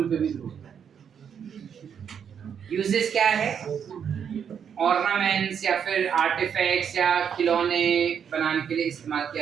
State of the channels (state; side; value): quieter; left; 7.8 dB